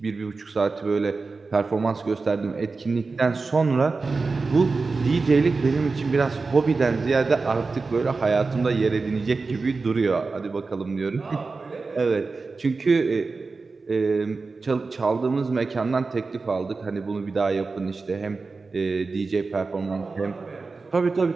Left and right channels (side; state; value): left; quieter; 4.1 dB